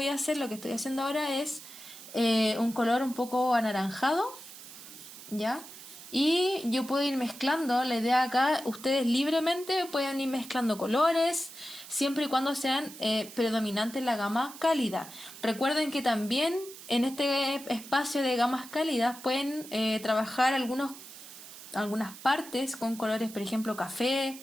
a hacer, lo que estoy haciendo ahora es un color un poco anaranjado, ¿ya? Y yo puedo ir mezclando. La idea acá, ustedes libremente pueden ir mezclando colores, siempre y cuando sean predominantes la gama cálida. Recuerden que también en este espacio de gamas cálidas pueden trabajar algunas partes con colores, por ejemplo,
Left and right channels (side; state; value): right; noise; hiss, 15 dB below the sound